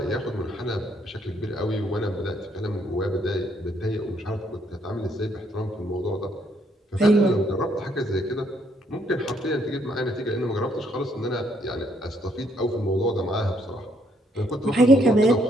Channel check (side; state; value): both; normal; correlation 0.70